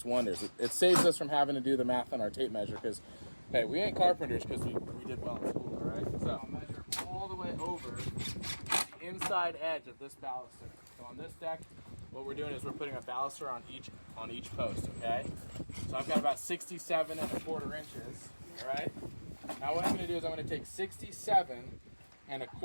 wonders. It saves us from having to do the math on our tape measure because, hey, we ain't carpenters because we did well in school, all right? So I'll measure all the way over the inside edge of this baluster. So on this deck, what we're doing is we're putting a baluster on each post, okay? So I've got about 67 1/4 inches, all right? Now what I'm gonna do is I'm gonna take 67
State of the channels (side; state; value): both; inverted; correlation -1.00